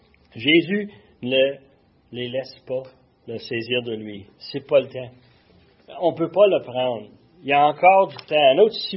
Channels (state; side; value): identical; both; correlation 1.00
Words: Jésus ne les laisse pas le saisir de lui. C'est pas le temps. On ne peut pas le prendre. Il y a encore du temps, un autre 6